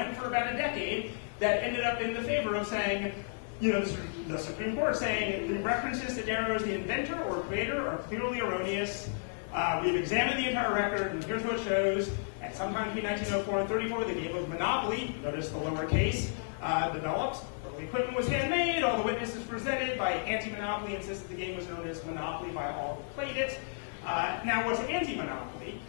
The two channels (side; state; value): right; silent; digital silence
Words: for about a decade that ended up in the favor of saying, the Supreme Court saying the references to Darrow as the inventor or creator are clearly erroneous. We've examined the entire record, and here's what it shows. At sometime between 1904 and 34, the game of Monopoly, notice the lower case, developed. Early equipment was handmade. All the witnesses presented by anti-monopoly insisted the game was known as Monopoly by all who played it. Now, what's anti-monopoly?